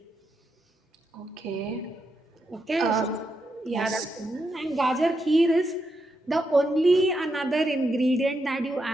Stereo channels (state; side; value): normal; both; correlation 0.83